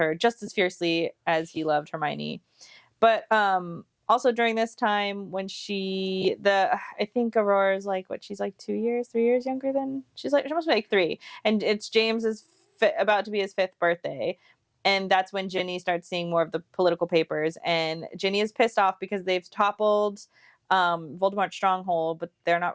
just as fiercely as he loved Hermione. But also during this time when I think Aurora's like, she's like 3 years younger than, she must be like 3. And it's James's about to be his 5th birthday. And that's when Ginny starts seeing more of the political papers. And Ginny is pissed off because they've toppled Voldemort's stronghold, but they're not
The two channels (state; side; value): identical; both; correlation 1.00